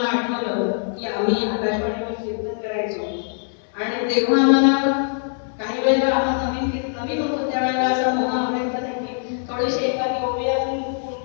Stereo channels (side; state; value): right; silent; 61 dB below the other